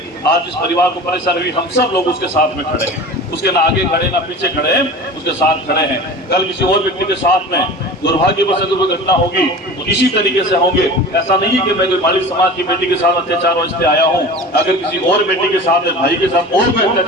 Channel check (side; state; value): both; normal; correlation 0.36